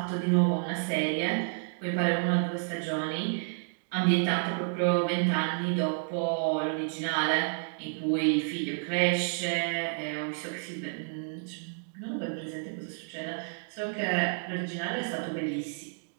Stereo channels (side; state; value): left; silent; digital silence